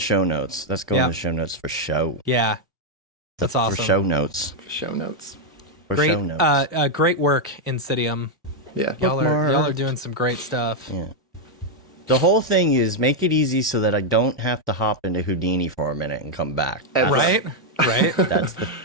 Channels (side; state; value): both; normal; correlation 0.00